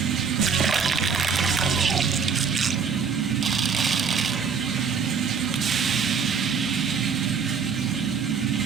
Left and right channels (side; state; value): left; quieter; 6.1 dB